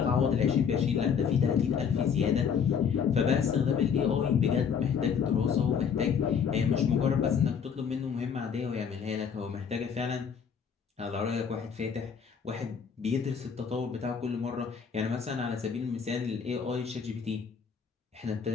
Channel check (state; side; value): quieter; right; 6.9 dB